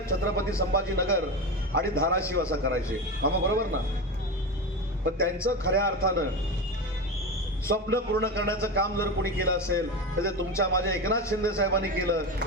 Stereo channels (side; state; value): both; normal; correlation 0.21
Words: छत्रपती संभाजीनगर आणि धाराशिव असा करायचे। मामा बरोबर ना? पण त्यांचं खऱ्या अर्थानं स्वप्न पूर्ण करण्याचं काम जर कोणी केलं असेल तर ते तुमच्या माझ्या एकनाथ शिंदे साहेबांनी केलं।